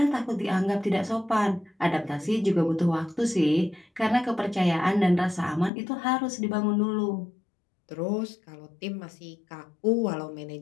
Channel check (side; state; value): right; drops out; at 5.7 s